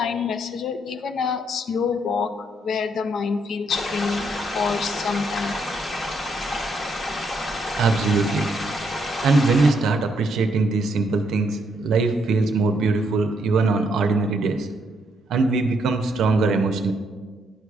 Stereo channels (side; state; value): both; normal; correlation 0.74